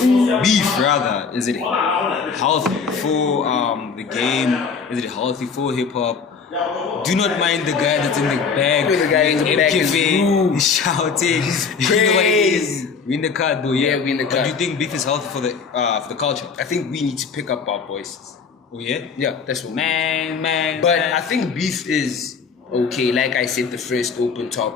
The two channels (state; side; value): quieter; right; 5.6 dB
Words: beef rather, is it healthy for the game? Is it healthy for hip hop? do not mind the guy that's in the back. The guy in the back is rude. He's shouting. You know what it is? We in the car though, yeah. We in the car. But do you think beef is healthy for the culture? I think we need to pick up our voices. Oh yeah? Yeah, that's what. Man. But I think beef is okay. Like I said, the first open